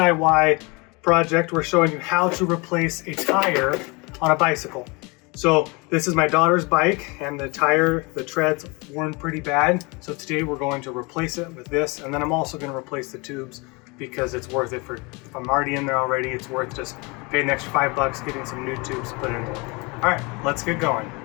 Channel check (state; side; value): quieter; right; 27.7 dB